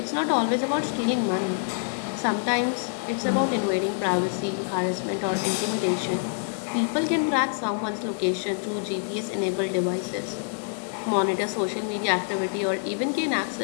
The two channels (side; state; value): right; silent; 61 dB below the other